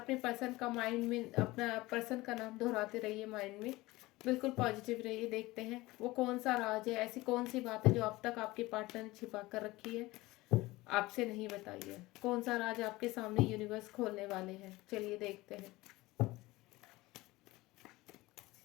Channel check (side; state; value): right; quieter; 19.9 dB